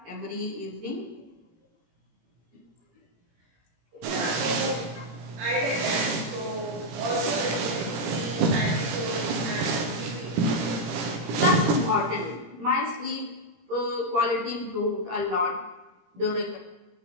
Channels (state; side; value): late; left; 17 ms